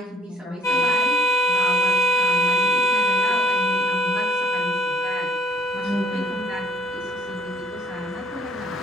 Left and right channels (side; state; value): both; normal; correlation 0.62